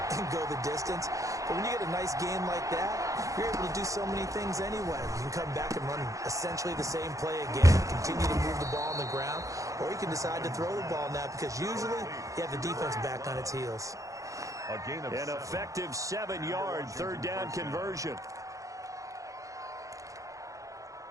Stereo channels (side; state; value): left; late; 0.16 ms